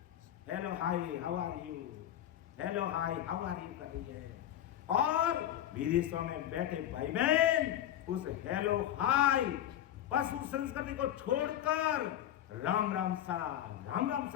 Hello hi how are you, hello hi how are you कर रही है। और विदेशों में बैठे भाई बहन उस हेलो हाय पशु संस्कृति को छोड़कर राम राम सा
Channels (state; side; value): quieter; right; 11.6 dB